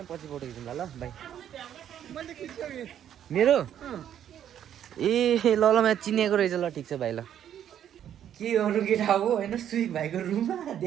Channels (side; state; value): left; quieter; 10.1 dB